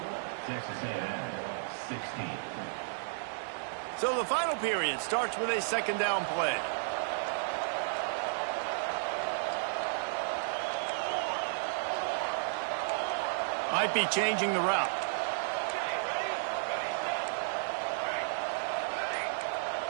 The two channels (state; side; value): silent; left; digital silence